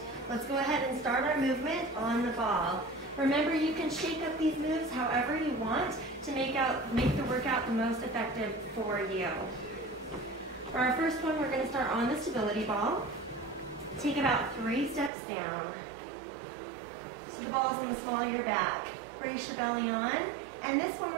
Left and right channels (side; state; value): left; drops out; at 15.1 s